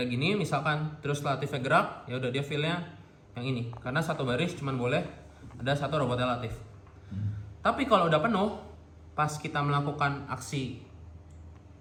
gini, misalkan terus Latifnya gerak, ya udah dia feel-nya yang ini, karena satu baris cuman boleh ada 1 robotnya Latif. Tapi kalau udah penuh, pas kita melakukan aksi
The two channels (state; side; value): identical; both; correlation 1.00